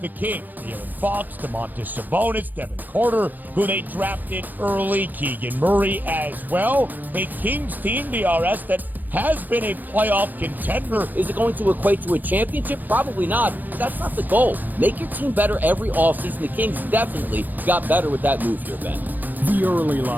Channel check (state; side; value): late; left; 0.085 ms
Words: the Kings. De'Aaron Fox, Domantas Sabonis, Devin Carter, who they drafted early, Keegan Murray as well. A Kings team, DRS, that has been a playoff contender. Is it going to equate to a championship? Probably not. That's not the goal. Make your team better every offseason. The Kings definitely got better with that move here, Ben. The Early